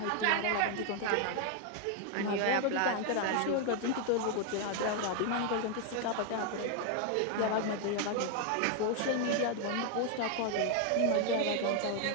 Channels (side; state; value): both; different; correlation 0.00